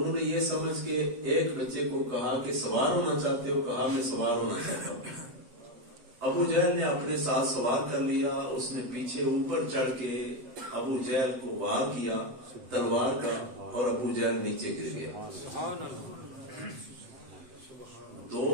نے یہ سمجھ کے ایک بچے کو کہا کہ سوار ہونا چاہتے ہو؟ کہا میں سوار ہونا چاہتا ہوں۔ ابو جہل نے اپنے ساتھ سوار کر لیا، اس نے پیچھے اوپر چڑھ کے ابو جہل کو وار کیا تلوار کا، اور ابو جہل نیچے گر گیا۔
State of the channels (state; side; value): late; left; 8.3 ms